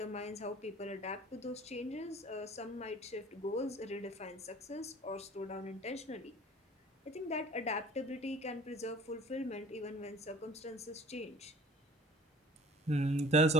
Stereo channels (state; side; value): normal; both; correlation 0.48